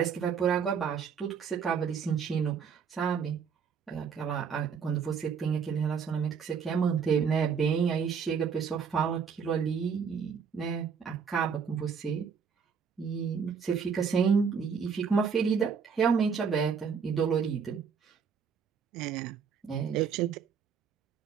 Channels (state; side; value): quieter; left; 6.5 dB